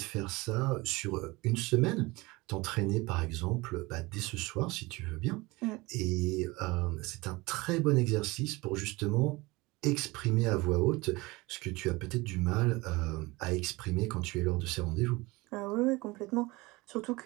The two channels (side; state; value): left; quieter; 22.8 dB